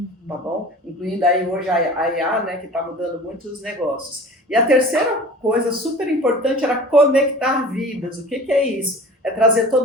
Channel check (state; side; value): normal; both; correlation 0.41